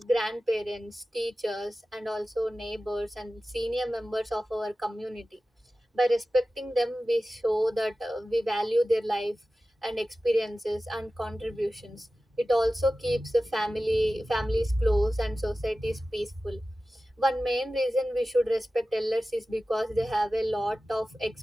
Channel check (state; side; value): normal; both; correlation 0.95